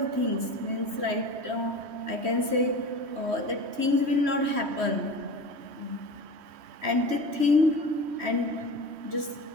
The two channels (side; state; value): left; late; 3.1 ms